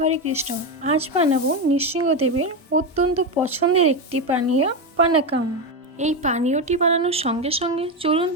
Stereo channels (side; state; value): both; normal; correlation 0.12